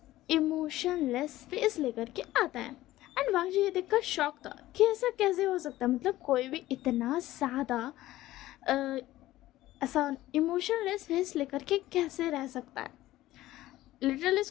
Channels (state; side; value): quieter; right; 15.8 dB